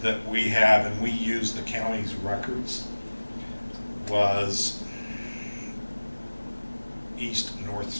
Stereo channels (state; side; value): inverted; both; correlation -1.00